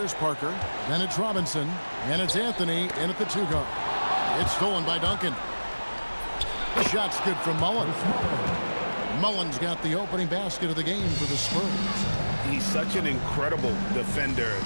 Parker. Then it's Robinson. And it's Anthony in at the 2-guard. It's stolen by Duncan. The shot's good from Mullen. Mullen's got the opening basket of the game for the Spurs. He's such an incredible defender.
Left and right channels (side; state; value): both; inverted; correlation -1.00